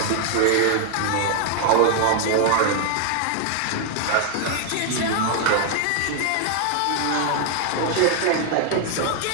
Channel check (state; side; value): different; both; correlation 0.00